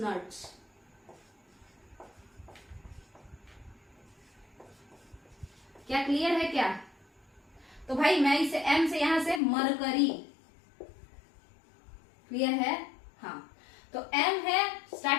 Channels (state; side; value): drops out; right; at 9.4 s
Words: क्या क्लियर है क्या? तो भाई मैं इसे एम से यहां से मरकरी, क्लियर है? हाँ, तो एम है